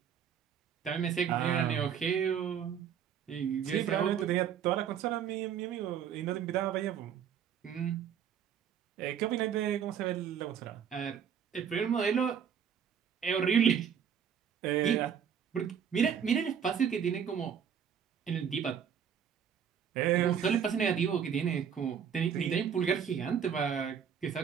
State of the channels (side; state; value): left; quieter; 8.1 dB